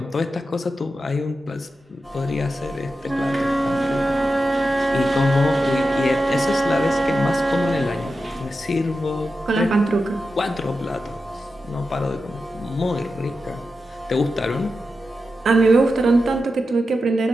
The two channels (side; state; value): both; normal; correlation 0.90